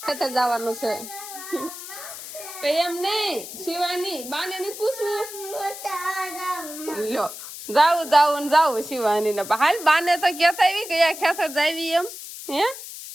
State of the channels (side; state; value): left; noise; hiss, 11 dB below the sound